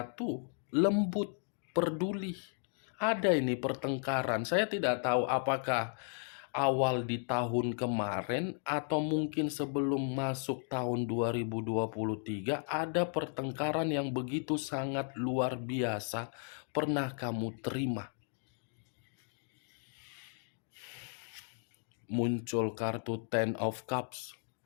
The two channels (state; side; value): silent; right; 54 dB below the other